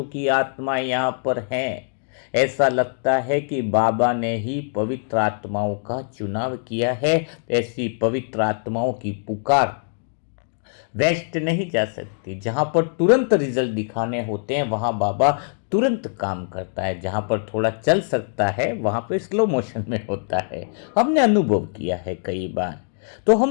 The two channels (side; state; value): right; silent; digital silence